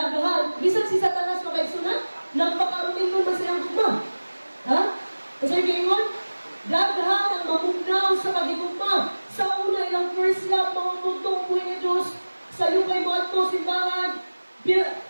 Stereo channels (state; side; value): inverted; both; correlation -1.00